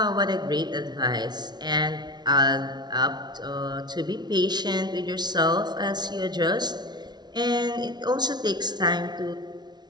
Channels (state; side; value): late; left; 0.20 ms